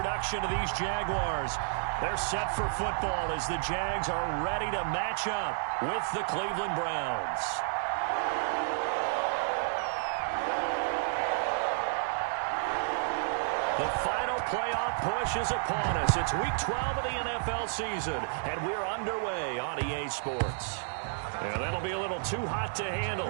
of these Jaguars. They're set for football as the Jags are ready to match up with the Cleveland Browns. The final playoff push is upon us. It's Week 12 of the NFL season, and we're underway on EA Sports. And that'll be a little too hot to handle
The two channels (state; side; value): silent; left; digital silence